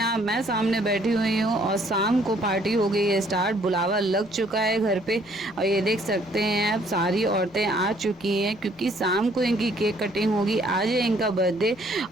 आप, मैं सामने बैठी हुई हूँ और शाम को पार्टी हो गई है स्टार्ट। बुलावा लग चुका है घर पे और ये देख सकते हैं आप, सारी औरतें आ चुकी हैं क्योंकि शाम को इनकी केक कटिंग होगी। आज है इनका बर्थडे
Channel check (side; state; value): left; noise; rumble, 30 dB below the sound